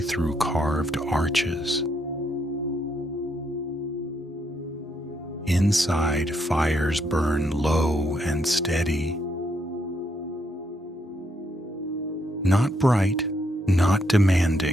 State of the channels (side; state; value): both; normal; correlation 0.76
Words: carved arches. Inside, fires burn low and steady. Not bright, not